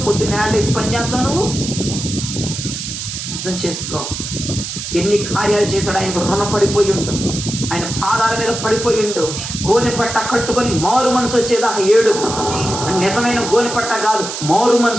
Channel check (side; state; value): right; noise; hiss, 6 dB below the sound